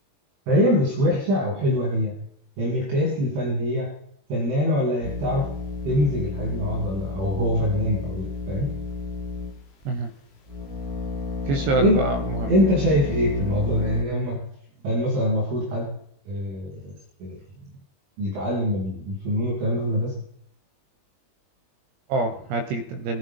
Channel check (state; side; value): late; left; 21 ms